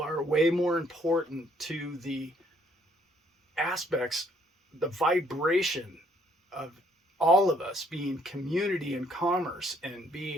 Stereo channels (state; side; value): normal; both; correlation 0.66